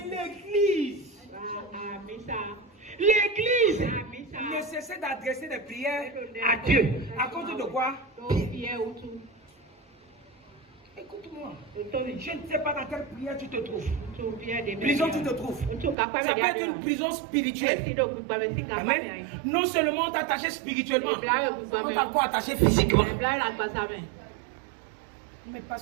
l'église ne cessait d'adresser des prières à Dieu. À cause de quoi? Pierre. Écoute-moi, je ne sais pas dans quelle prière tu te trouves. Prison tu te trouves. Ça peut être une prison spirituelle. Amen. Non seulement on t'a attaché spirituellement, on t'a encore attaché physiquement. Mais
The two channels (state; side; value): drops out; left; at 16.0 s